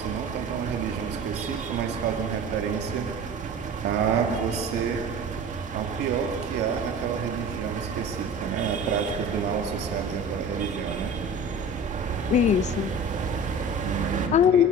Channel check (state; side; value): normal; both; correlation 0.37